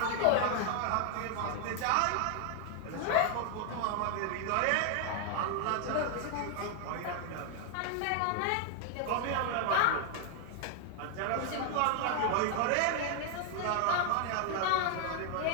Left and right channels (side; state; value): both; different; correlation 0.00